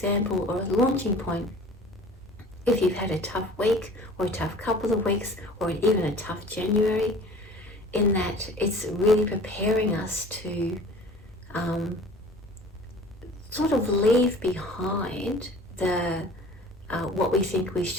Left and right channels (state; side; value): normal; both; correlation 0.45